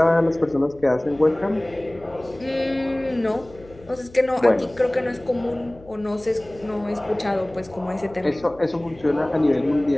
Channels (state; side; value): noise; left; hum, 22 dB below the sound